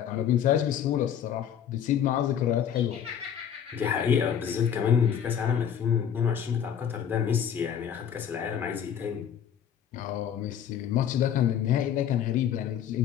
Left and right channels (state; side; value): quieter; right; 8.9 dB